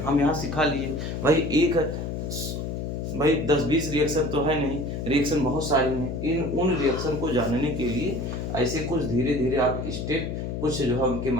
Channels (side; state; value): left; noise; hum, 4 dB below the sound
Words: यहाँ सिखा लिए भाई 10-20 रिएक्शन तो है नहीं, रिएक्शन बहुत सारी हैं। उन रिएक्शन को जानने के लिए ऐसे कुछ धीरे धीरे आप स्टेप, कुछ जो है उनके